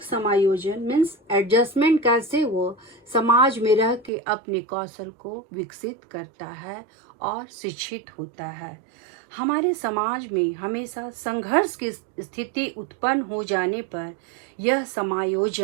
समायोजन मीन्स एडजस्टमेंट, कैसे वो समाज में रह के अपने कौशल को विकसित करता है और शिक्षित होता है। हमारे समाज में हमेशा संघर्ष की स्थिति उत्पन्न हो जाने पर यह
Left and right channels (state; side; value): drops out; left; at 4.1 s